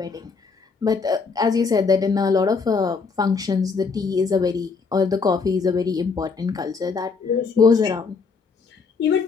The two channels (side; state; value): right; quieter; 4.9 dB